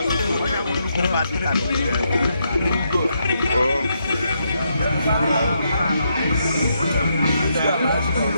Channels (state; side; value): inverted; both; correlation -0.79